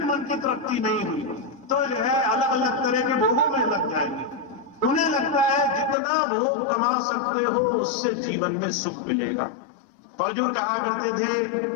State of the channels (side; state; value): right; drops out; at 6.0 s